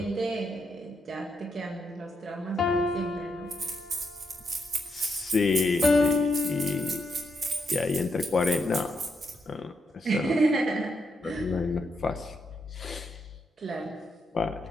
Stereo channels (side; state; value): both; normal; correlation 0.80